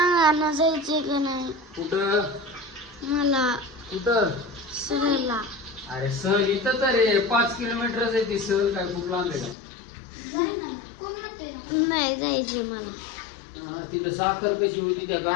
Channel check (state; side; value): drops out; right; at 9.6 s